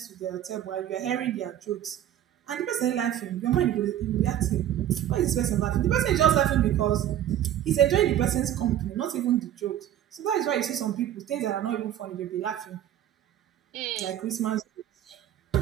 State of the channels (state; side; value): quieter; left; 11.4 dB